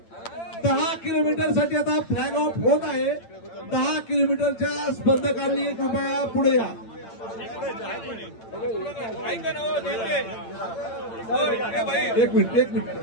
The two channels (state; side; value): late; right; 8.9 ms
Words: 10 किलोमीटर साठी आता फ्लॅग ऑफ होत आहे। 10 किलोमीटरच्या स्पर्धकांनी कृपया पुढे या। एक मिनिट